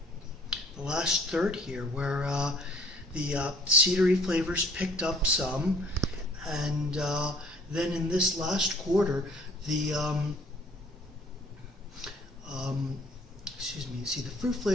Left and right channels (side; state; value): both; normal; correlation 0.56